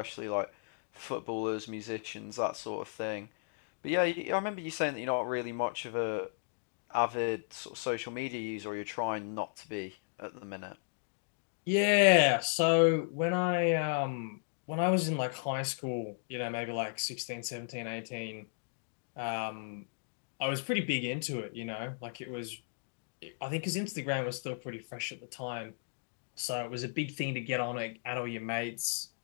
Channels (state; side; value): silent; right; digital silence